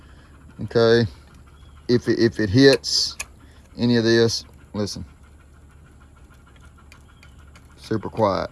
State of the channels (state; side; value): identical; both; correlation 1.00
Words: okay, if it hits any of this, listen. Super quiet,